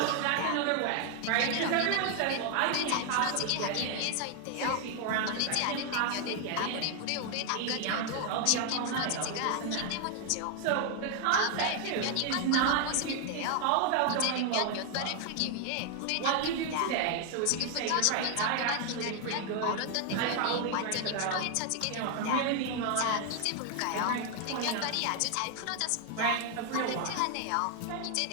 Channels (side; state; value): both; different; correlation 0.00